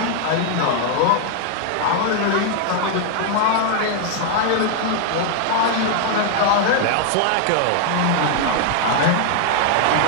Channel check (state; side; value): different; both; correlation 0.00